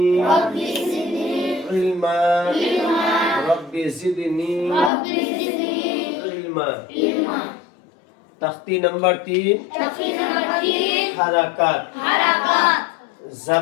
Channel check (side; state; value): right; drops out; at 4.9 s